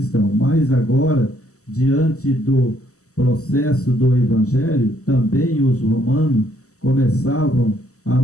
mas agora, diante do processo do evangelho, também os romanos começavam a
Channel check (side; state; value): right; late; 0.65 ms